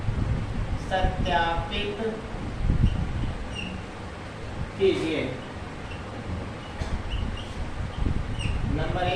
7 सत्यापित कीजिए। नंबर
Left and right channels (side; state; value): both; identical; correlation 1.00